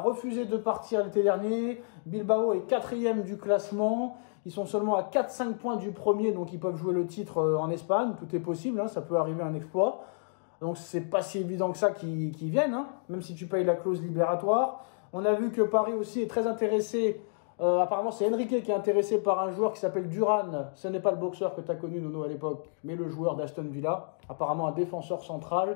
de partir l'été dernier. Bilbao est 4e du classement. Ils sont seulement à 4-5 points du premier, donc ils peuvent jouer le titre en Espagne. Tout est possible, hein, ça peut arriver un exploit. Donc c'est pas si évident que ça qu'ils viennent, hein, même si tu payes la clause libératoire. On a vu que Paris aussi est très intéressé. Apparemment, c'est Enrique qui est intéressé par un joueur qui s'appelle Duran. Ce n'est pas le boxeur que tu as connu, Nono, à l'époque, mais le joueur d'Aston Villa. Apparemment, un défenseur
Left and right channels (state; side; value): silent; right; digital silence